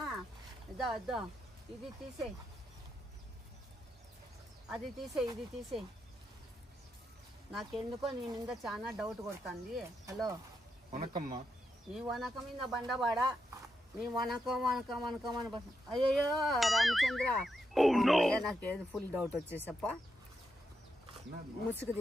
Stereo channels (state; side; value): normal; both; correlation 0.83